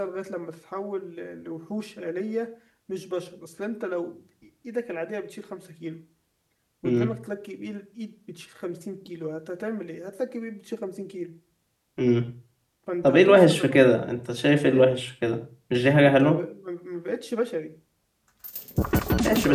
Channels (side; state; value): both; identical; correlation 1.00